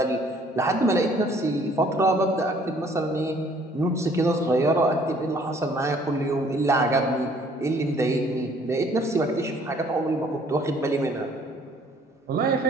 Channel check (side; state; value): both; normal; correlation 0.59